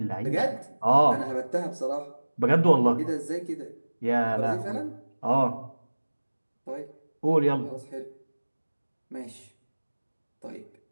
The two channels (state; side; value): inverted; both; correlation -1.00